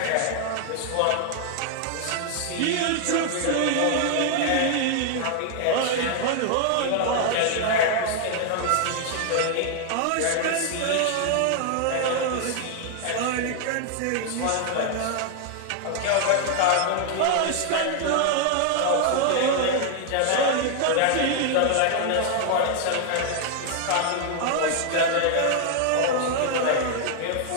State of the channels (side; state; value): both; different; correlation 0.00